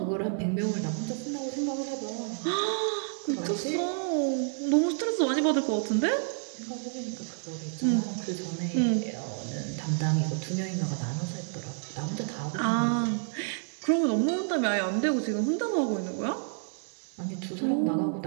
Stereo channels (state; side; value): silent; left; digital silence